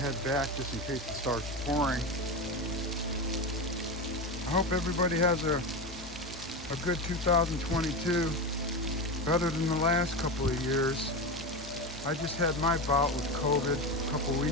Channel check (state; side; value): normal; both; correlation 0.20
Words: back just in case it starts pouring. I hope everybody has a good 2022, better than the last couple of years. I just had my bout with COVID a couple